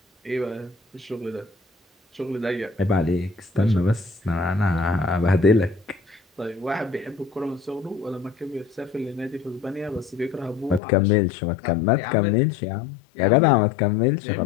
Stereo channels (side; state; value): right; drops out; at 10.8 s